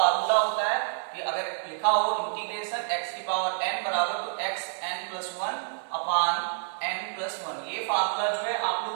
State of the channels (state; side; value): silent; left; digital silence